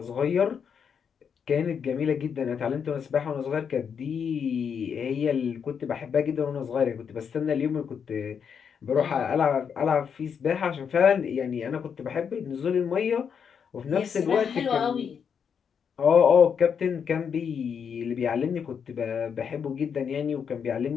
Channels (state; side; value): quieter; right; 7.0 dB